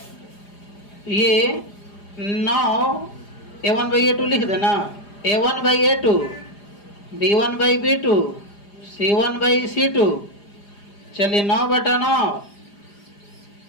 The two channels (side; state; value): right; late; 4.9 ms